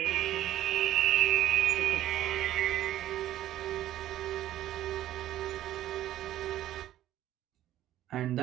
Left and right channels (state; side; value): quieter; left; 13.2 dB